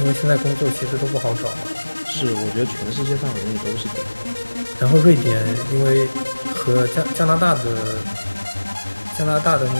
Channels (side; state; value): both; inverted; correlation -1.00